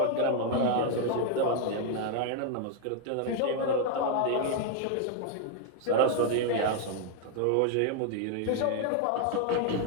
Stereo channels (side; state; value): both; different; correlation 0.00